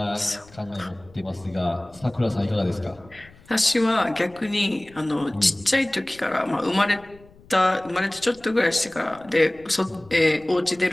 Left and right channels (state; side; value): noise; left; rumble, 25 dB below the sound